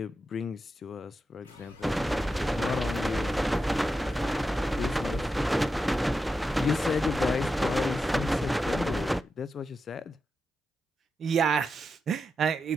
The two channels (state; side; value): normal; both; correlation 0.88